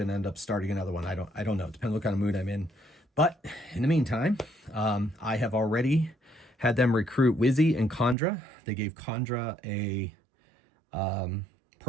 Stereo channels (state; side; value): drops out; left; at 8.2 s